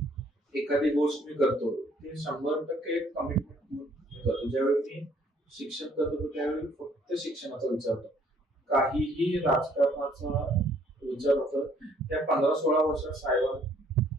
एखादी गोष्ट मी करतो ते 100% कमिटमेंट घेऊन करतो. ज्यावेळी मी शिक्षण करतो त्यावेळी फक्त शिक्षणाचा विचार होतो, काहीही राजकारणाचा विचार होतो. त्या 15-16 वर्षात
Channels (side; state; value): both; normal; correlation 0.63